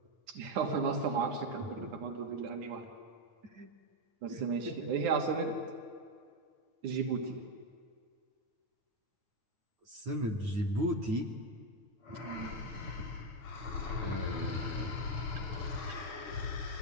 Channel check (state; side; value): late; left; 9.4 ms